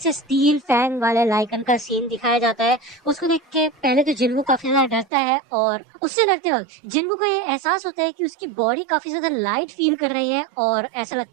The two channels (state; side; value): drops out; left; at 5.1 s